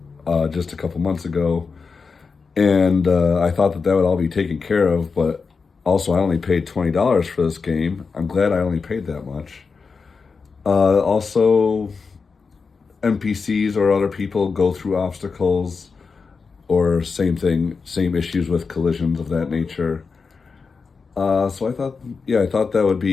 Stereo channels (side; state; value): right; quieter; 4.9 dB